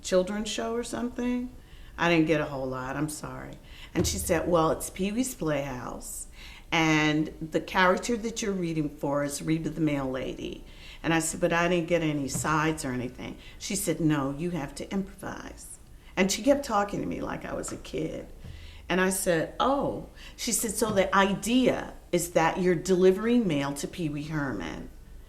children's show or something. I didn't get a whole lot. I'm sorry. And she said, "Well, it's Pee Wee's Playhouse. And the character that you're reading for is Reba the Mail Lady." And I said, "But I didn't get any sides or anything." She said, "No, you have to improvise." And she kept talking to me like I was a kid. And I said, "Oh." She said, "So the idea is that you're delivering mail to Pee Wee Herman."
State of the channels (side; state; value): both; identical; correlation 1.00